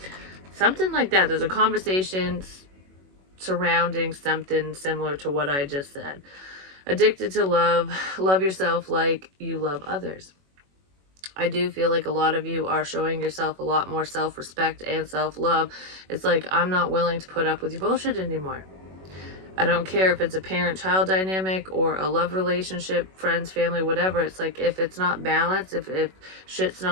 Something like that. There's a conversation surrounding something similar to what I just said. Addicted to love. Love yourself like you love others. I do feel like a lot of you are showing yourself a lot more self-respect and self-love. It's like, I'm not willing to put up with your bullshit anymore. I don't care if it's a parent-child dynamic or a love relationship, friends, family, whatever. It's like, if it's not balanced, if shit's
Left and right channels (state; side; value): late; left; 21 ms